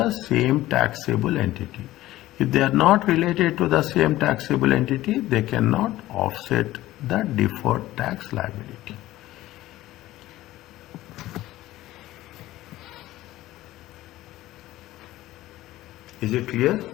same taxable entity. If they are not related to the same taxable entity, they cannot offset the deferred tax liability. Is it clear?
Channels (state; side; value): quieter; right; 15.9 dB